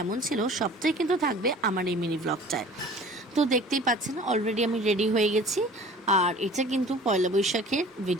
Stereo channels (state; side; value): normal; both; correlation 0.46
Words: ছিল সবটাই কিন্তু থাকবে আমার এই মিনি ব্লগটায়। তো দেখতেই পাচ্ছেন অলরেডি আমি রেডি হয়ে গেছি। আর এটা কিন্তু পয়লা বৈশাখের